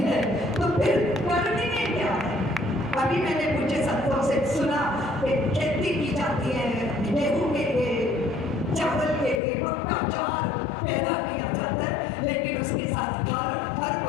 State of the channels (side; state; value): right; drops out; at 9.4 s